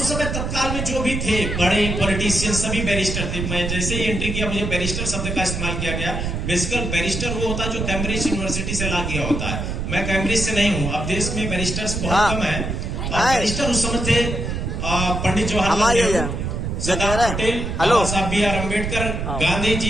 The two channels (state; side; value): noise; right; rumble, 3 dB below the sound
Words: समय तत्काल में जो भी थे बड़े पॉलिटिशियन, सभी बैरिस्टर थे। मैं जैसे ही एंट्री किया, मुझे बैरिस्टर शब्द का इस्तेमाल किया गया। बेसिकल बैरिस्टर वो होता है जो कैम्ब्रिज यूनिवर्सिटी से ला किया होता है। मैं कैम्ब्रिज से नहीं हूँ। अब देश में बैरिस्टर्स बहुत कम है। बैरिस्टर उस समय थे पंडित जवाहरलाल नेहरू, सरदार पटेल, बाबा साहब बी आर अम्बेडकर, गांधी